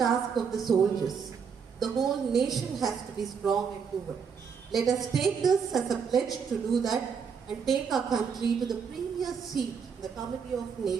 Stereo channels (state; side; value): quieter; left; 6.4 dB